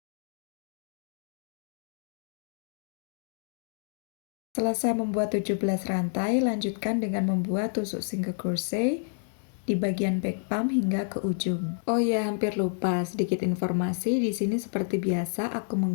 Selesai membuat 17 rantai, lanjutkan dengan membuat tusuk single crochet di bagian back pump hingga ke ujung. Oh ya, hampir lupa sedikit informasi. Di sini seperti biasa aku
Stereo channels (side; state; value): right; silent; digital silence